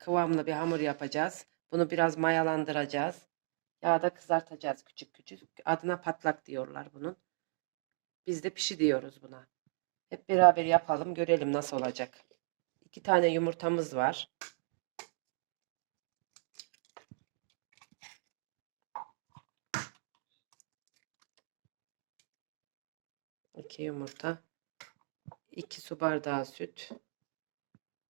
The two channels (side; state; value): left; silent; digital silence